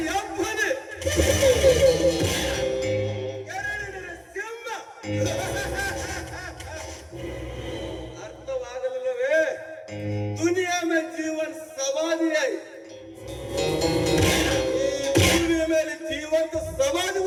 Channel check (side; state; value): both; identical; correlation 1.00